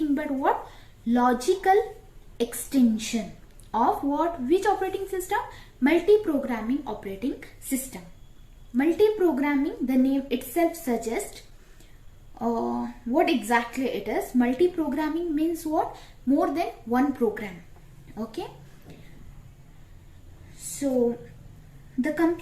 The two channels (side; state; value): both; identical; correlation 1.00